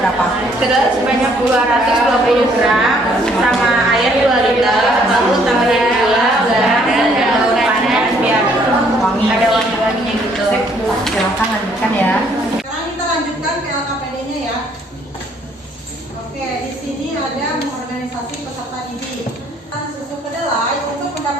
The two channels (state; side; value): normal; both; correlation 0.65